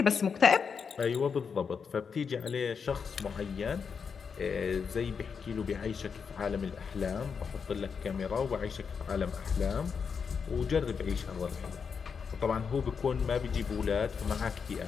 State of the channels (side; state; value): right; quieter; 6.1 dB